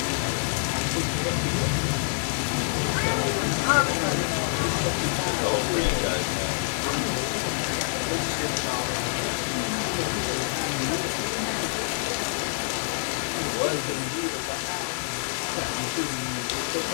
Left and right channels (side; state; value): right; silent; 60 dB below the other